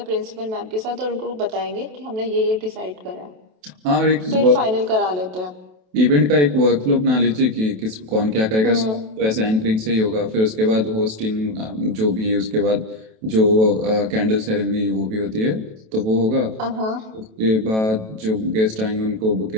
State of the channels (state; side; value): late; left; 27 ms